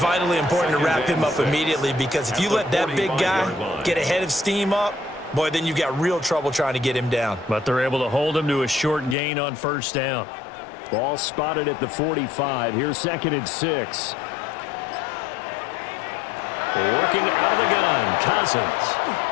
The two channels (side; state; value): right; drops out; at 9.2 s